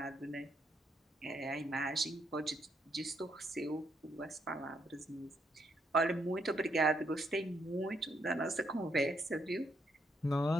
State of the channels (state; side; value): normal; both; correlation 0.76